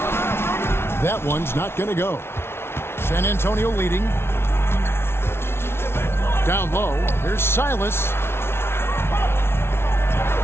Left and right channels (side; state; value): right; late; 0.12 ms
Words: That one's not going to go. San Antonio leading. Down low. Here's Silas.